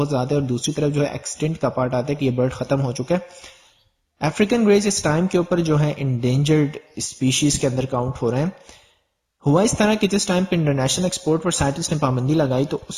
زیادہ ہے، اور دوسری طرف جو ہے ایکسٹنٹ کا پارٹ آتا ہے کہ یہ برڈ ختم ہو چکا ہے۔ افریقن گریز اس ٹائم کے اوپر جو ہے انڈینجرڈ اسپیشیز کے اندر کاؤنٹ ہو رہے ہیں۔ ہوا اس طرح کہ جس ٹائم پہ انٹرنیشنل ایکسپورٹ پر سائنٹسٹ نے پابندی لگائی تو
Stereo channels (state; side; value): identical; both; correlation 1.00